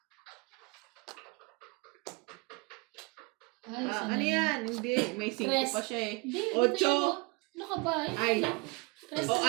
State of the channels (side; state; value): left; quieter; 27.9 dB